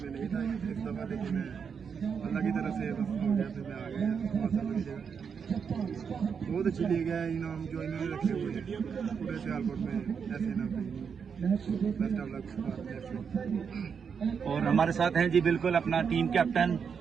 میں نہیں تھا اس دفعہ، لیکن اللہ کی طرف سے بس ہو گیا، پھر میں آ گیا۔ بہت اچھی لیگ ہے، انعام جو انہوں نے رکھے ہوئے ہیں پورے سیالکوٹ میں، ایسے انعام بیسٹ آف لک۔ اور ہمارے ساتھ ہیں جی بالکل اپنا ٹیم کیپٹن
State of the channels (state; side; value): quieter; left; 6.5 dB